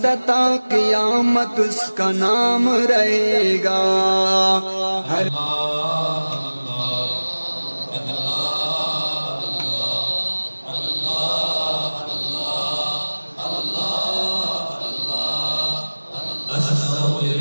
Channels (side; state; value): both; inverted; correlation -1.00